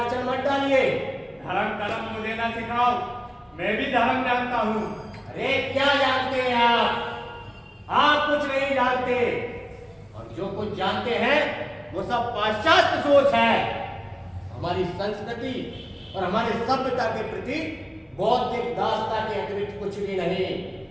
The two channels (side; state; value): both; identical; correlation 1.00